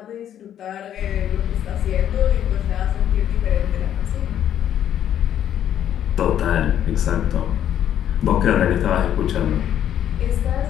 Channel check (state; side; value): quieter; right; 10.4 dB